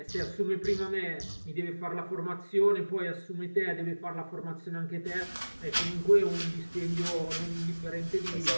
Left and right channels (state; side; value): inverted; both; correlation -1.00